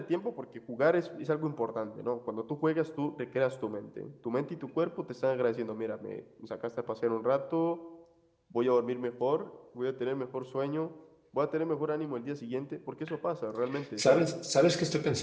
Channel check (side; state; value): both; identical; correlation 1.00